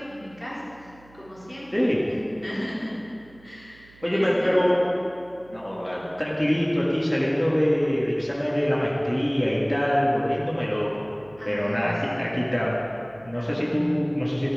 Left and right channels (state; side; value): noise; right; hum, 26 dB below the sound